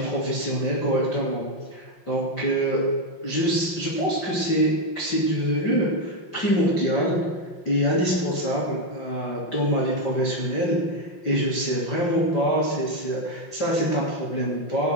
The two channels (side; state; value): right; late; 5.7 ms